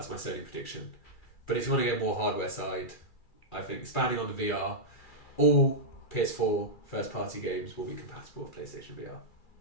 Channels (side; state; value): right; late; 2.4 ms